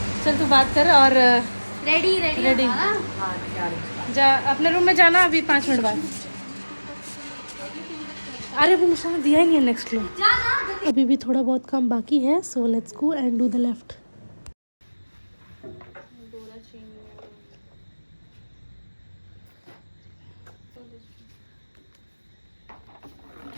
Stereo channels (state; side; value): inverted; both; correlation -1.00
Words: चल तू बात कर और रेडी रेडी हां क्या है? जा अपने रूम में जाना अभी 5 मिनट बाद। अरे वो निशान दिया ही नहीं है नेक्स्ट रूम। अभी भी थोड़ा बहुत काम बाकी है, so let's go and do the left.